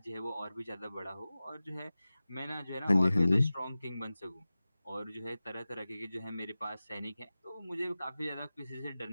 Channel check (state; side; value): inverted; both; correlation -0.96